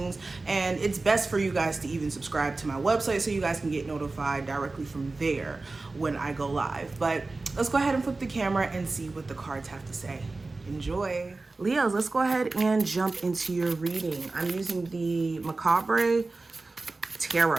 And it's best for you guys to even subscribe to my website so you guys can get notified directly from there when I go live. But let's go ahead and flip the camera and see what the cards have to say. Enjoy. Leos, let's go ahead and jump into your reading. I'm using the Macabre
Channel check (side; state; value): left; quieter; 3.5 dB